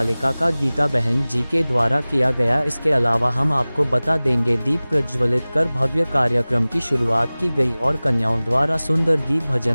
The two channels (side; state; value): both; inverted; correlation -0.99